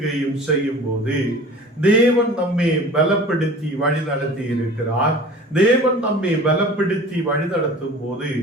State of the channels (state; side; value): normal; both; correlation 0.42